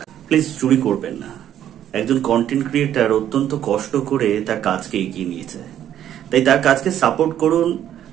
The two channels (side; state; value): left; quieter; 10.9 dB